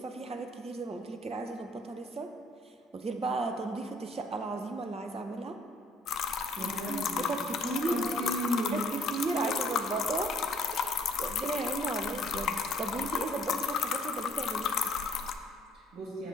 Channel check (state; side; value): normal; both; correlation 0.60